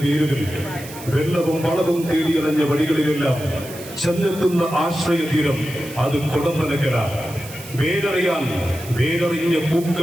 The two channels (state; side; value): noise; right; hiss, 15 dB below the sound